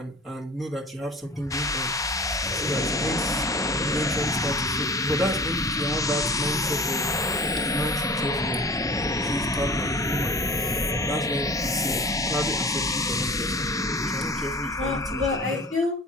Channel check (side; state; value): both; normal; correlation 0.41